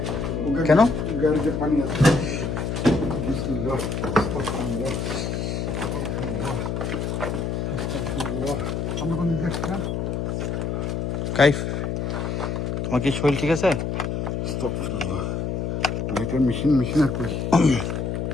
কেন? গাড়িতে পানি আছে বিসমিল্লাহ আস্তাগফিরুল্লাহ আস্তাগফিরুল্লাহ আস্তাগফিরুল্লাহ আমরা কোন দিকে আসলাম? কাইফ, তোমার কি শরীর ঠিক আছে? আস্তাগফিরুল্লাহ লাইটার মেশিন আর কই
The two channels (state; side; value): noise; left; hum, 1 dB below the sound